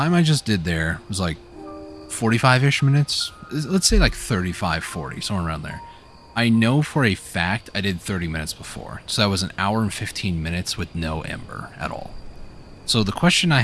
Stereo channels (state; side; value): identical; both; correlation 1.00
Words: I just did there was like 45-ish minutes. Let's say like 35, 40, somewhere around there. I know for a fact I did 30 minutes before. So that was an hour and 15 minutes with no ember at all. So the question I